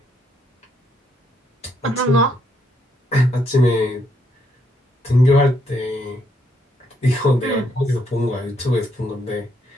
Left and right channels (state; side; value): normal; both; correlation 0.74